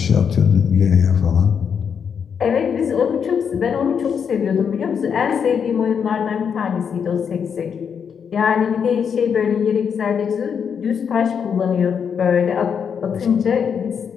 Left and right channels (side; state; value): right; quieter; 7.1 dB